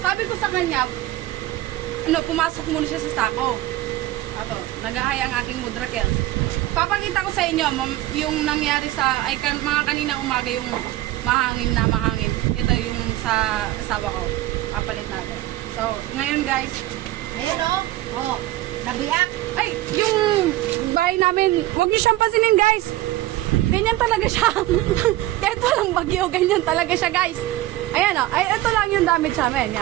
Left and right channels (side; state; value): left; quieter; 16.2 dB